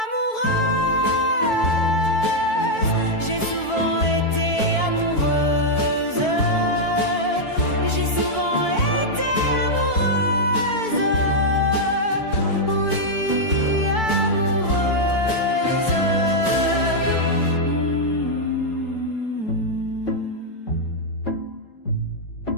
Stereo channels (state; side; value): late; right; 4.5 ms